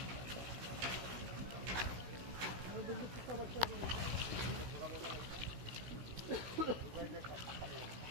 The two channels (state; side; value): late; left; 16 ms